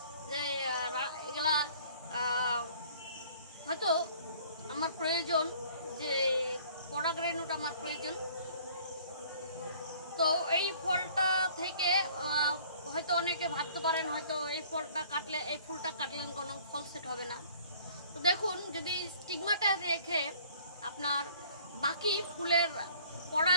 যে এগুলা হয়তো আমার প্রয়োজন, যে পরাগরেণুটা আমার প্রয়োজন। তো এই ফলটা থেকে হয়তো অনেকে ভাবতে পারেন হয়তো এই ফুলটা কাটলেন কোনো ফল সেট হবে না। তো দেখুন, যদি স্টিগমাটা রেখে আপনার বাকি ফুলের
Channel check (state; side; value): inverted; both; correlation -0.54